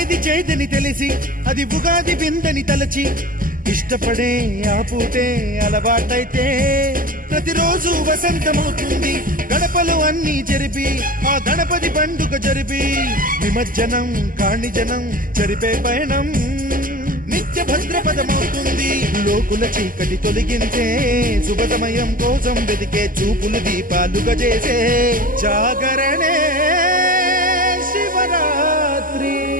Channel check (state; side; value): late; left; 0.41 ms